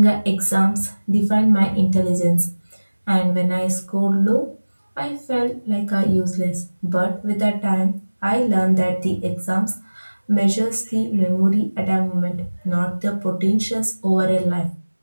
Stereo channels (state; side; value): inverted; both; correlation -1.00